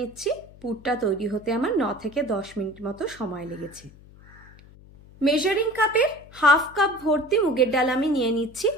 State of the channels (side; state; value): left; noise; hum, 22 dB below the sound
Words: পুরটা তৈরি হতে আমার 9 থেকে 10 মিনিট মতো সময় লেগেছে। মেজারিং কাপে 1/2 কাপ ভর্তি মুগের ডাল আমি নিয়ে নিচ্ছি,